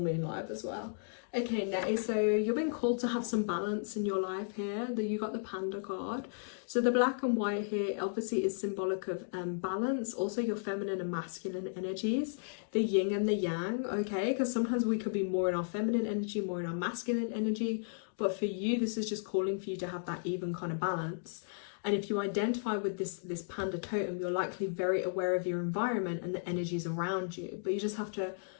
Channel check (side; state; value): right; silent; digital silence